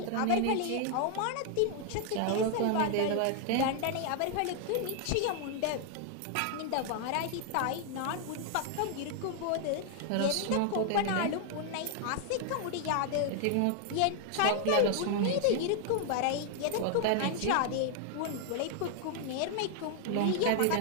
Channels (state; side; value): different; both; correlation 0.00